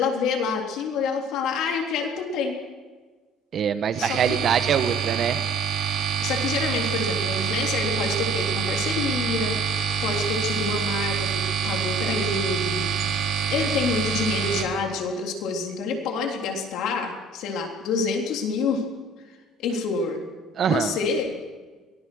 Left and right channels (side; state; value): both; normal; correlation 0.51